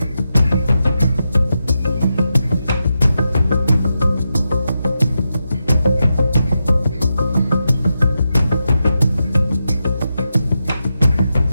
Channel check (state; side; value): inverted; both; correlation -0.88